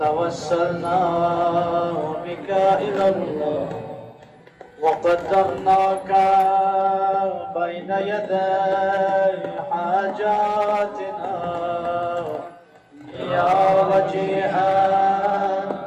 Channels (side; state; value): both; identical; correlation 1.00